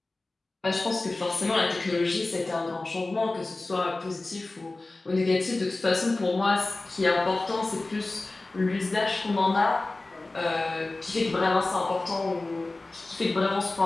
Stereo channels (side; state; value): right; quieter; 3.1 dB